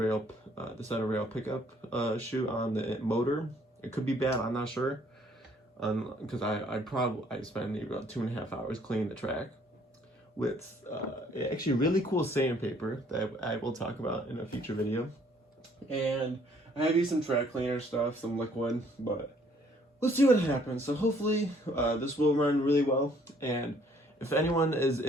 the center rail pickup shoe on the motor. It could be bad. I'm not sure. Because I spent maybe about 2.5 hours cleaning the track with actually really cool sandpaper that I will talk about in a future video. And I have used some track cleaner stuff, some liquid, but let's see what happens. So hopefully this will run really well. And if anyone is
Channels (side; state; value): both; normal; correlation 0.62